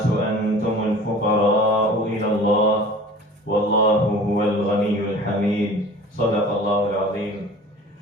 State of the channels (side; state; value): both; normal; correlation 0.43